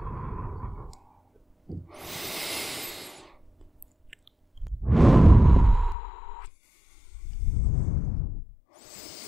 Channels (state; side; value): drops out; right; at 6.0 s